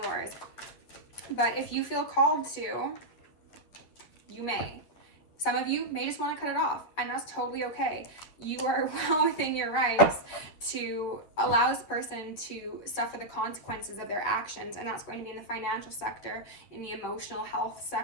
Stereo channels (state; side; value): late; right; 10 ms